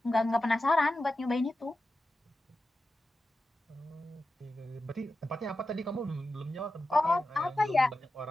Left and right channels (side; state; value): both; normal; correlation 0.91